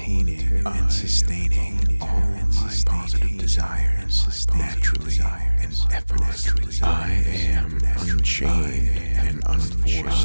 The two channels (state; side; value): inverted; both; correlation -1.00